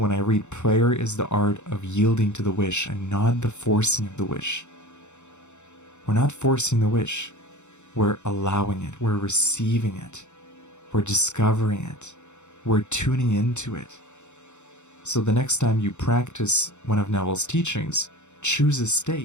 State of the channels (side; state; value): right; late; 0.83 ms